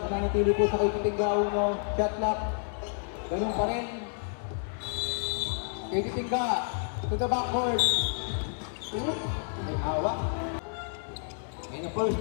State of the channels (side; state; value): right; silent; 58 dB below the other